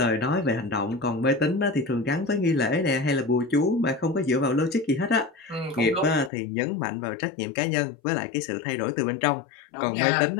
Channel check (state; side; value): drops out; right; at 6.3 s